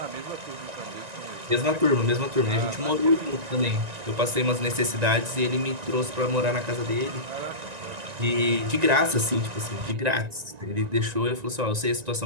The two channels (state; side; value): late; left; 1.9 ms